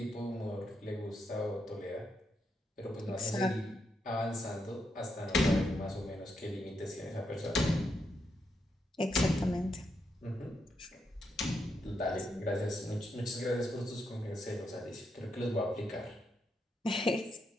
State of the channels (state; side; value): normal; both; correlation 0.81